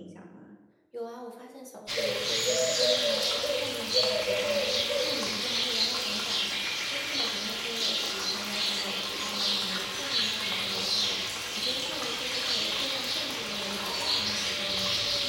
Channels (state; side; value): identical; both; correlation 1.00